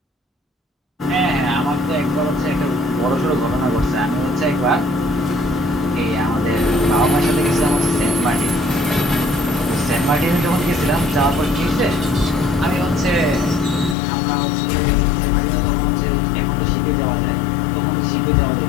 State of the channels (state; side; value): drops out; right; at 14.0 s